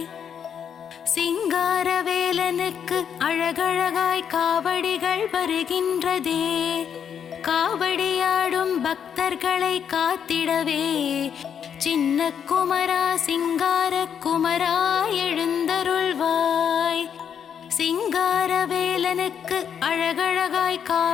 சிங்காரவேலனுக்கு அழகழகாய் காவடிகள் வருகின்றதே, காவடியாடும் பக்தர்களை காத்திடவே சின்ன குமரா சிங்கார குமரா எழுந்தருள்வாய். சிங்காரவேலனுக்கு அழகழகாய்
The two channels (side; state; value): right; quieter; 8.0 dB